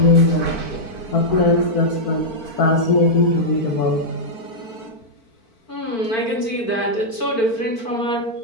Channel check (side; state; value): right; late; 4.5 ms